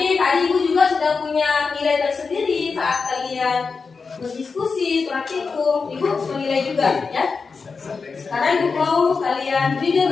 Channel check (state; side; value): quieter; right; 4.8 dB